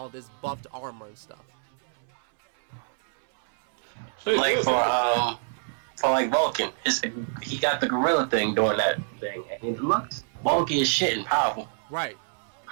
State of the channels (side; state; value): left; silent; 60 dB below the other